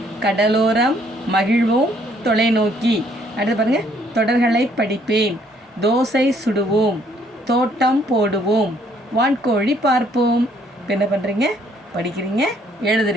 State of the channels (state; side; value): normal; both; correlation 0.65